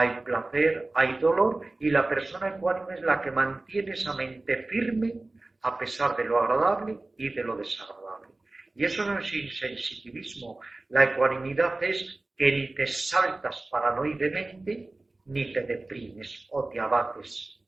placer, hay dolor, y la persona ecuánime es la que mantiene esa mente firme a pesar de lo agradable y de lo desagradable. Y eso no es insensitivismo. La ecuanimidad es que ni te saltas paranoidemente, ni te deprimes o te abates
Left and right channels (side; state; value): left; quieter; 3.0 dB